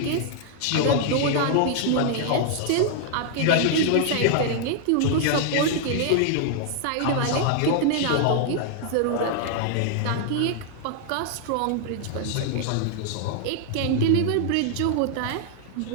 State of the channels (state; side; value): different; both; correlation 0.00